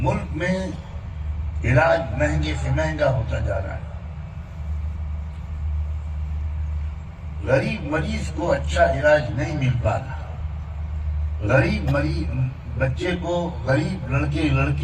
میں علاج مہنگے سے مہنگا ہوتا جا رہا ہے، غریب مریض کو اچھا علاج نہیں مل پا رہا، غریب بچے کو، غریب لڑکے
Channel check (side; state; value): both; identical; correlation 1.00